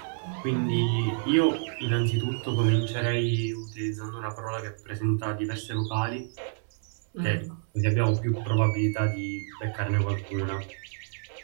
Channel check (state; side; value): silent; left; 59 dB below the other